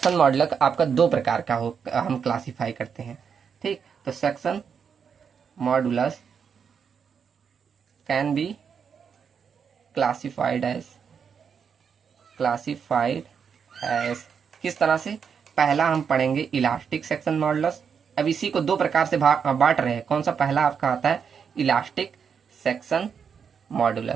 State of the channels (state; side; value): quieter; left; 6.8 dB